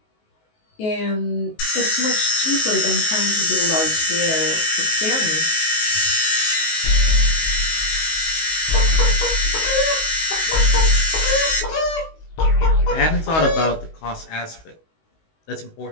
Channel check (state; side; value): late; right; 19 ms